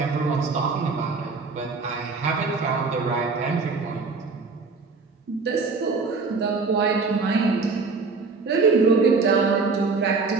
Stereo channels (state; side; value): quieter; left; 4.4 dB